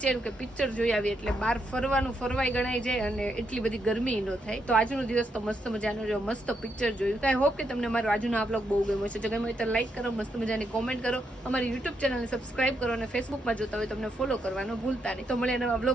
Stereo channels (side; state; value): both; normal; correlation 0.80